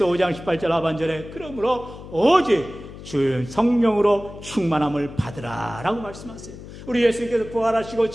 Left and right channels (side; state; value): left; noise; hum, 14 dB below the sound